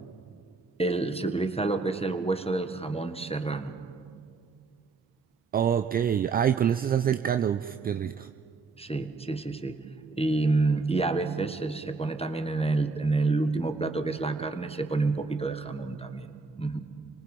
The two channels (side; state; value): left; quieter; 4.3 dB